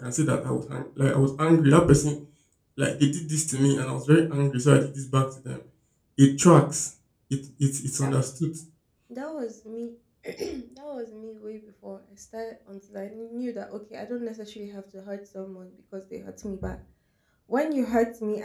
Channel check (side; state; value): both; identical; correlation 1.00